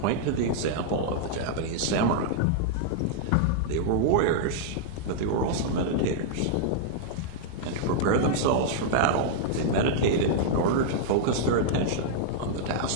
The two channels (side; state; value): both; different; correlation -0.01